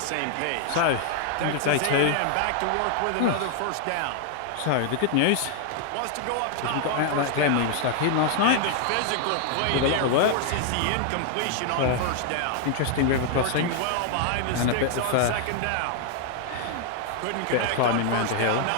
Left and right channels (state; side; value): different; both; correlation 0.00